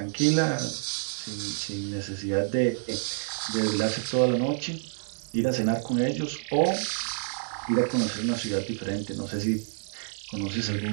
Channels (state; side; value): silent; left; digital silence